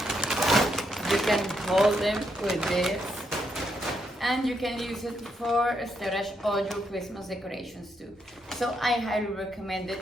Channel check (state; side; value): normal; both; correlation 0.78